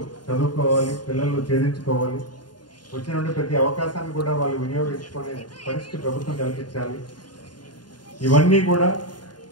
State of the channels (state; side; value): late; right; 0.70 ms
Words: చదువుకోవాలి, పిల్లలు ఛేదించుకోవాలి, వచ్చినటువంటి ప్రతి అవకాశాన్ని కూడా వాళ్ళు వినియోగించుకునే పరిస్థితి ప్రభుత్వం కల్పించాలి. ఇవన్నీ కూడా